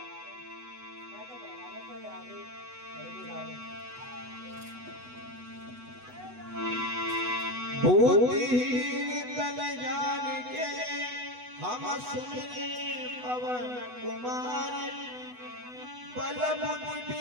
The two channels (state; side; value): late; left; 8.1 ms